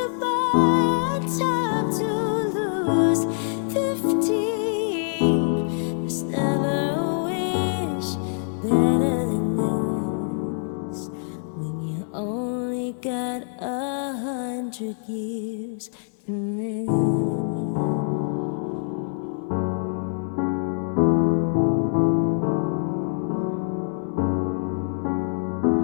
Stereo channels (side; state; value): right; silent; 62 dB below the other